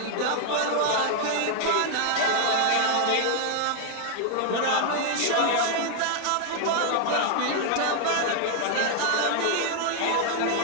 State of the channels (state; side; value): different; both; correlation 0.00